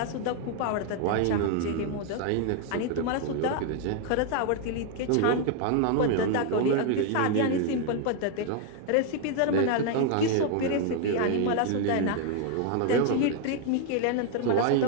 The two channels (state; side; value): different; both; correlation 0.01